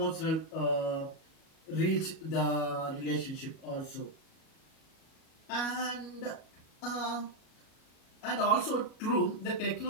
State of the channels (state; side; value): late; right; 37 ms